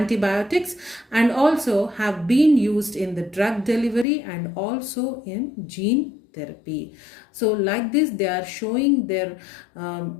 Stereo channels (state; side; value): drops out; right; at 4.0 s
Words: and also have been used in the drug delivery and also in gene therapy. So like this, they are showing their